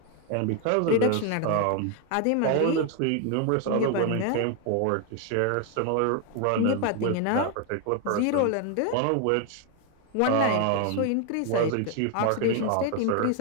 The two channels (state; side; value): different; both; correlation 0.01